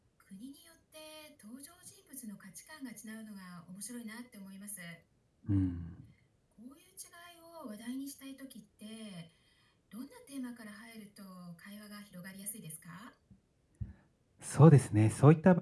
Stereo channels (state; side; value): identical; both; correlation 1.00